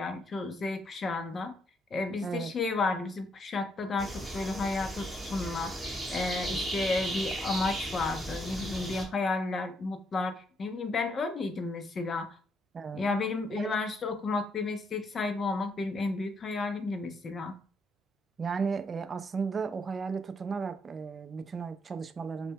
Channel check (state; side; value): normal; both; correlation 0.75